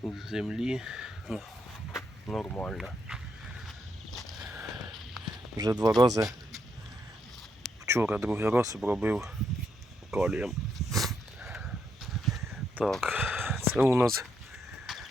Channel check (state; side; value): normal; both; correlation 0.78